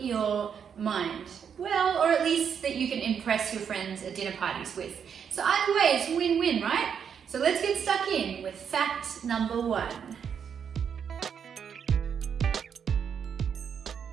mind. Well, or at least that you can impress your friends at dinner parties with. So either way, it's win-win, right? So let's get stuck in with fact number 1.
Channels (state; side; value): quieter; left; 7.5 dB